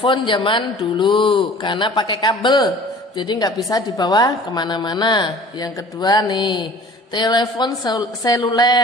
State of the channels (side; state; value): both; normal; correlation 0.46